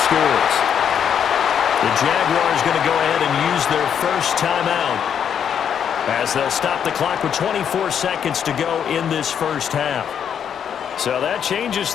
scores. The Jaguars going to go ahead and use their first timeout, as they'll stop the clock with 24 seconds to go in this first half. So that changes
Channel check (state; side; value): quieter; right; 8.3 dB